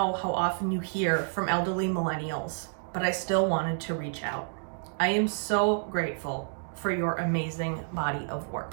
how often you hear from elderly millennials, but I still wanted to reach out. I am so grateful for your amazing body of work.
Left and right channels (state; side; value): silent; left; digital silence